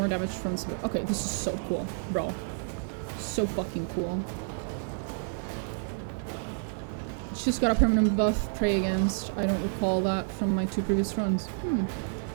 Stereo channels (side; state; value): left; silent; 57 dB below the other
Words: damage from Subductor. Okay, this is so cool, bro. So fucking cool. She's got a permanent buff, Pray Against. I don't recall that from my 2 previous runs.